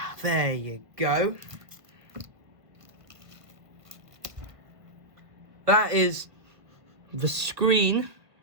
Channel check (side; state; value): left; late; 1.5 ms